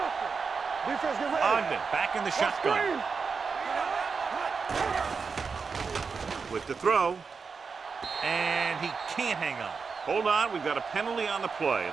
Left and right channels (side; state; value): left; quieter; 5.2 dB